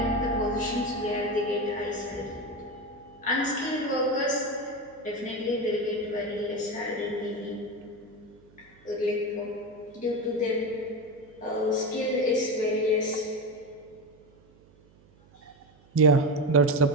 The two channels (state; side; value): noise; right; hum, 28 dB below the sound